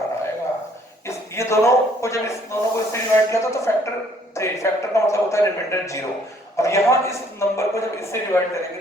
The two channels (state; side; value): normal; both; correlation 0.63